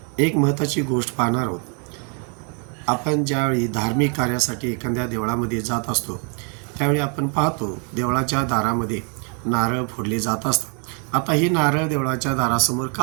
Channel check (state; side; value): quieter; left; 39.0 dB